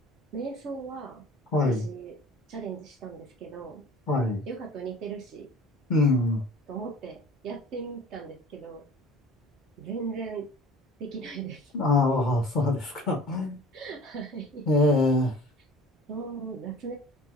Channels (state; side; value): normal; both; correlation 0.45